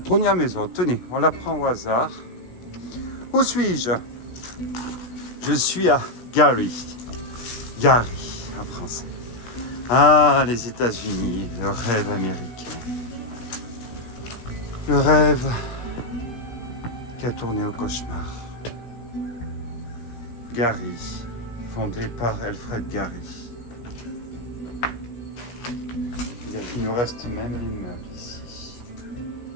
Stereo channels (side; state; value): right; late; 16 ms